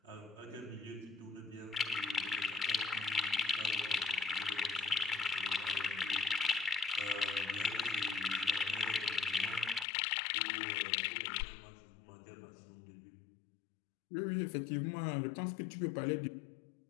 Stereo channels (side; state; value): right; drops out; at 9.9 s